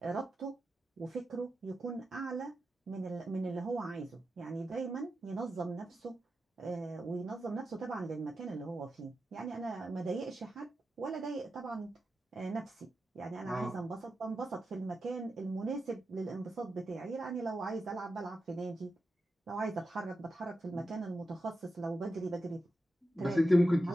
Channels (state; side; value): normal; both; correlation 0.90